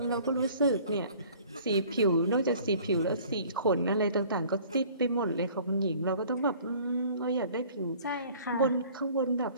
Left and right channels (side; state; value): both; inverted; correlation -0.51